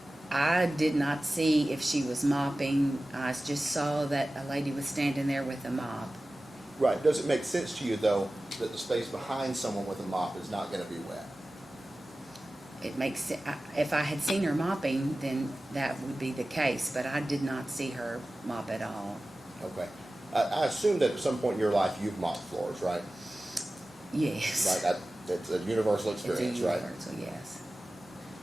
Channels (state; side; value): normal; both; correlation 0.96